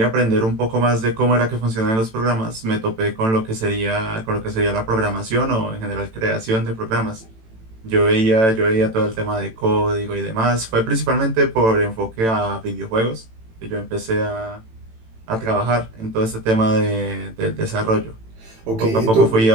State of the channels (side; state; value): left; late; 18 ms